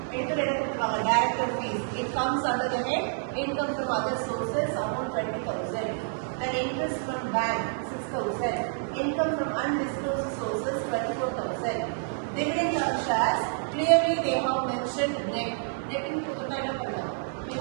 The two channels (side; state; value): left; silent; 59 dB below the other